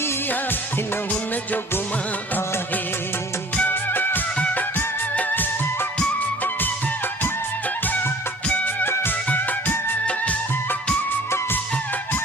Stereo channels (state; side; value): normal; both; correlation 0.49